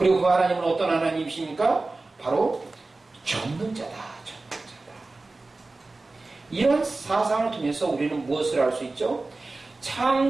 그 하나님은 어떤 하나님이십니까? 바로 전능자다. 전능자다. 이런 사상을 통해서 우리는 무엇을 알 수 있죠?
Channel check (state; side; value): quieter; left; 3.3 dB